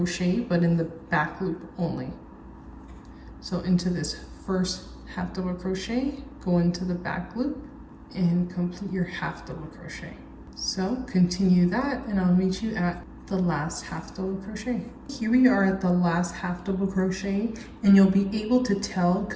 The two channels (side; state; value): both; identical; correlation 1.00